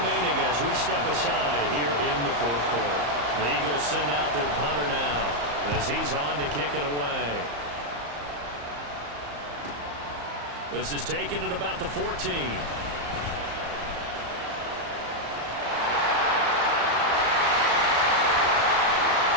as we step aside here in the 4th quarter. The Eagles send out their punter now as he's on to kick it away. This is taken at about the 14.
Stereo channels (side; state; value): left; late; 34 ms